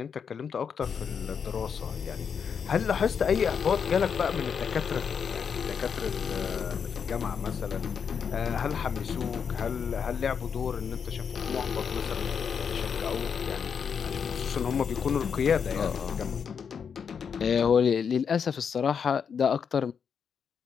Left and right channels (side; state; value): right; quieter; 6.8 dB